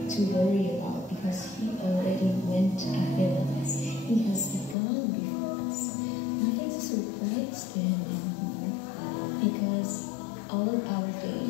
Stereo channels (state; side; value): drops out; right; at 4.8 s